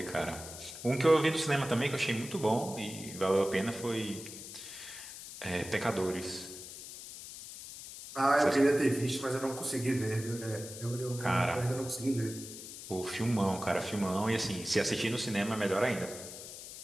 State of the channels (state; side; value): noise; left; hiss, 12 dB below the sound